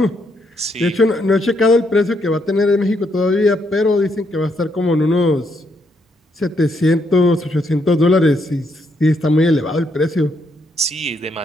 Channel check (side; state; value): both; normal; correlation 0.76